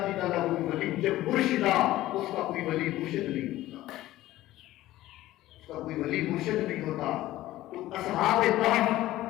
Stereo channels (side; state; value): right; quieter; 15.7 dB